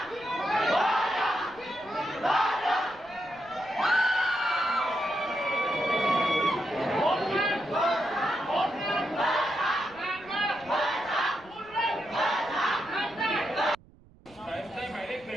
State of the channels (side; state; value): right; noise; rumble, 25 dB below the sound